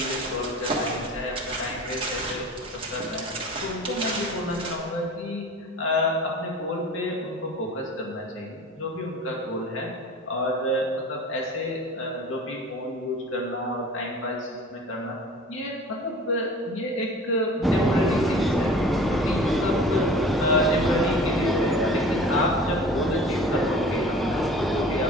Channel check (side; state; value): both; normal; correlation 0.41